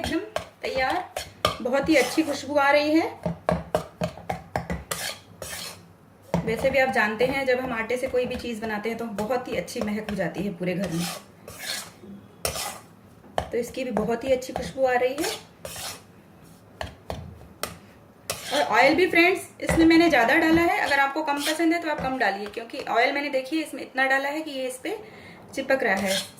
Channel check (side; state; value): both; identical; correlation 1.00